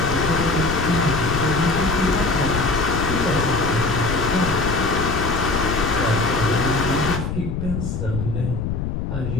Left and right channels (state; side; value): noise; left; rumble, 3 dB below the sound